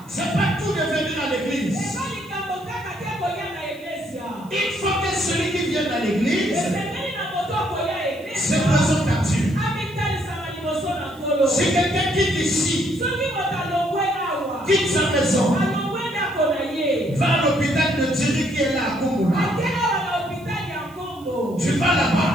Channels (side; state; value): right; noise; hiss, 27 dB below the sound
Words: C'est pas tout de venir à l'église. Il faut que celui qui vient à l'église se présente à Dieu. C'est quelqu'un qui est ici, quitte sa maison, va à l'hôpital de Thierry qui est là à Kumula. Tu vas là-bas,